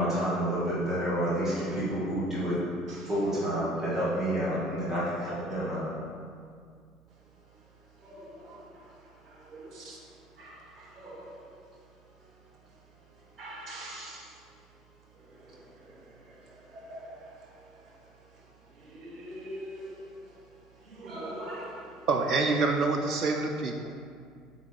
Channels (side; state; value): right; noise; hum, 28 dB below the sound